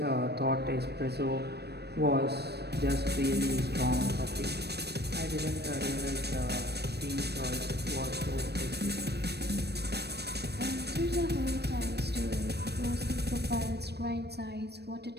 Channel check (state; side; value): late; left; 0.48 ms